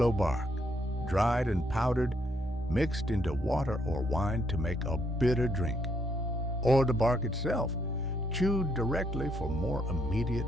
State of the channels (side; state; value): both; normal; correlation 0.72